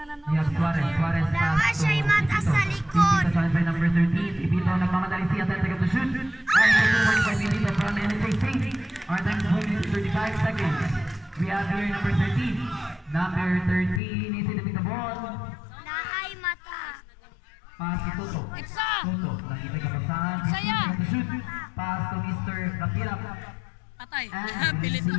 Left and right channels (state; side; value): drops out; right; at 14.0 s